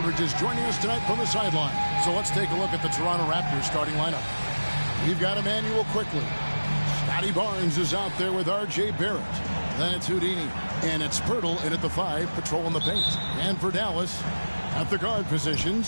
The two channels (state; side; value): inverted; both; correlation -1.00